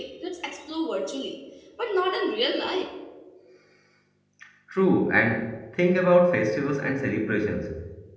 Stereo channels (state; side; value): identical; both; correlation 1.00